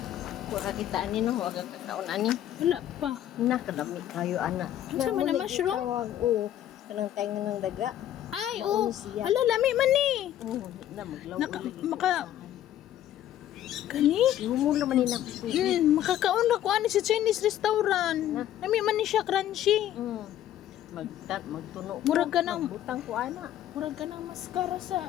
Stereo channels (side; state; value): right; quieter; 11.9 dB